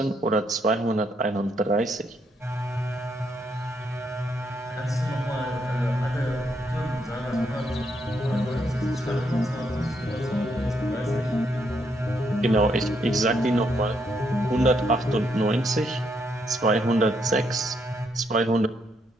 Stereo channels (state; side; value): normal; both; correlation 0.75